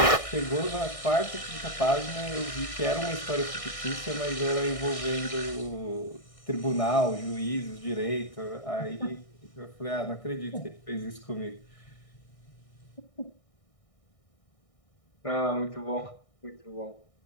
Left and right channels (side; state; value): right; late; 1.6 ms